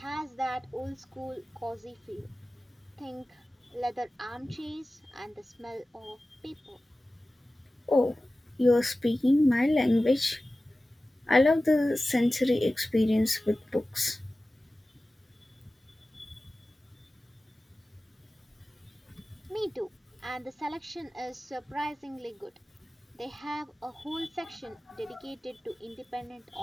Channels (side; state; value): both; normal; correlation 0.96